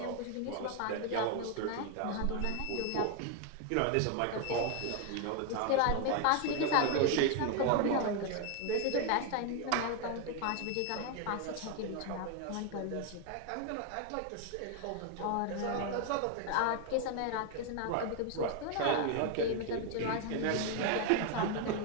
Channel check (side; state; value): both; different; correlation 0.01